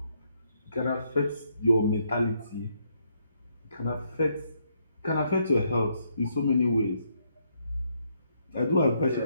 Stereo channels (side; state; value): both; inverted; correlation -0.74